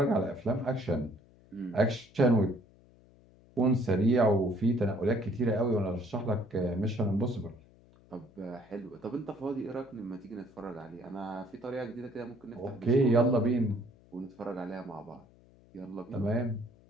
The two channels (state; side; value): noise; left; hum, 27 dB below the sound